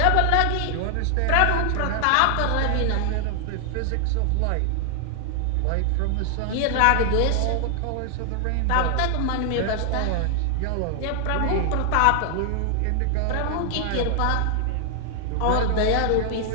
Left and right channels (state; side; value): different; both; correlation 0.00